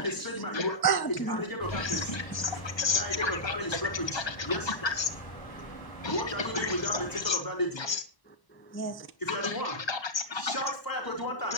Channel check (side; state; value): right; late; 1.0 ms